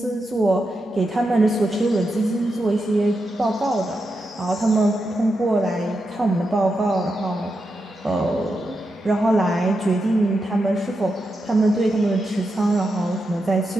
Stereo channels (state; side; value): normal; both; correlation 0.86